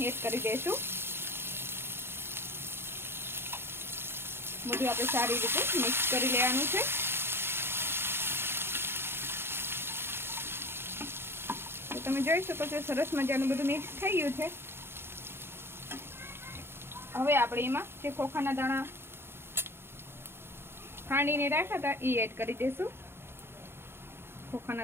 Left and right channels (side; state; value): left; late; 0.11 ms